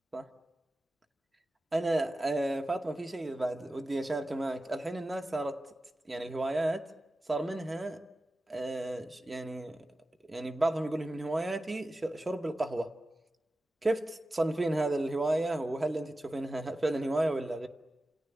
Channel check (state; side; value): normal; both; correlation 0.94